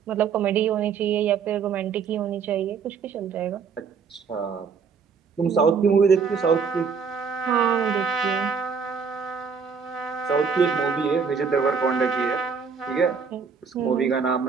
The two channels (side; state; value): left; quieter; 5.8 dB